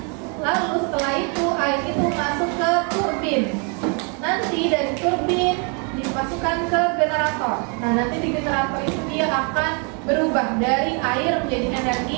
Lalu setelah itu air itu masuk ke turbin. Nanti dari turbin dimasukkan ke generator. Nah, nanti di generator itu dia akan berubah dari air menjadi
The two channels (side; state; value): left; quieter; 36.7 dB